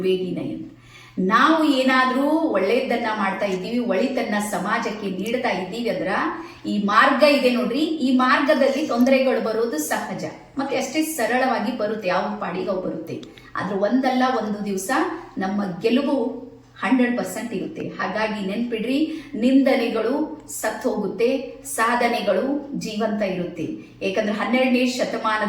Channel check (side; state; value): both; identical; correlation 1.00